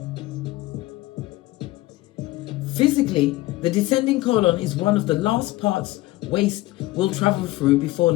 Physically, the descending colon is one of the last parts waste will travel through before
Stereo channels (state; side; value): quieter; right; 18.5 dB